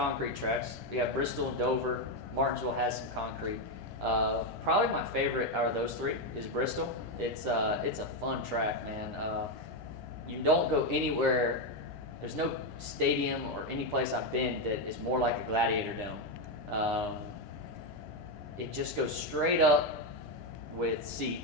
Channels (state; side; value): normal; both; correlation 0.07